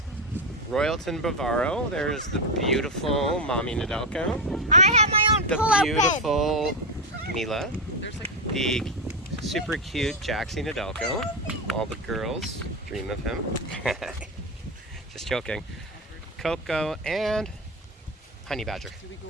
Royalton Bavaro. There's the beautiful Mommy Nedelko. I have my own The pull-out beautiful Mila. The super cute Jaxie Nedelko. All the girls dream of him. Just joking. Coco and Honey Badger.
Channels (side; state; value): both; normal; correlation 0.12